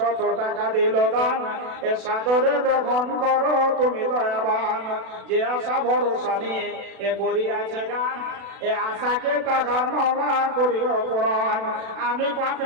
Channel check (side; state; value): left; late; 37 ms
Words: টাকা দিল দান, এ সাদরে গ্রহণ করো তুমি দয়াবান। যে আশা ভরসা নিয়ে এ করিয়াছে গান, এ আশাকে তাহার মাওলা করিও পূরণ। আমি